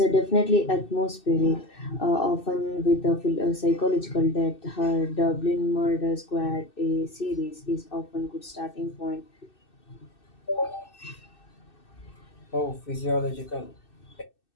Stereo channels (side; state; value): right; late; 2.6 ms